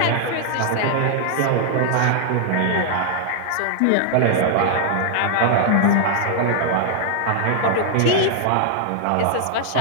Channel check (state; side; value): different; both; correlation 0.00